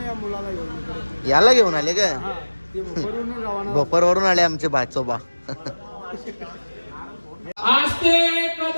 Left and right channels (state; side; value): inverted; both; correlation -1.00